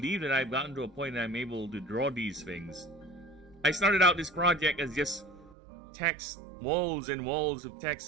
that I've gotten to a point that I'm able to draw these things. I started out this project as just text, walls and walls of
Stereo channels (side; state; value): left; drops out; at 5.6 s